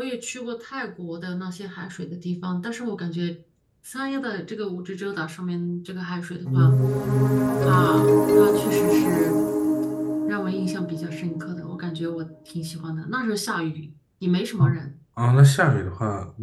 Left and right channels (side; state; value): both; identical; correlation 1.00